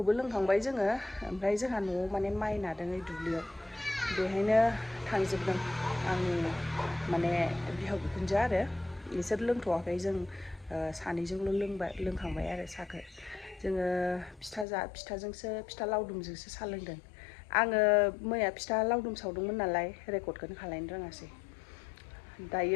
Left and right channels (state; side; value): drops out; right; at 14.7 s